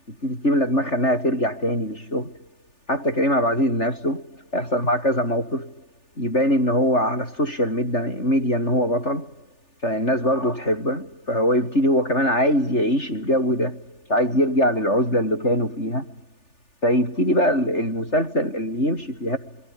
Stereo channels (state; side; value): late; right; 3.4 ms